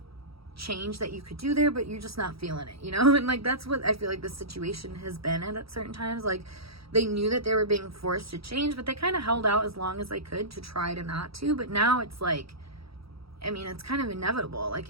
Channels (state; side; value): late; left; 0.76 ms